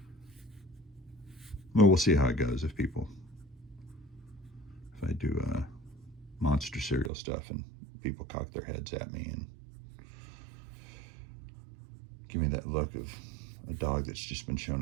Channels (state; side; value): drops out; left; at 7.1 s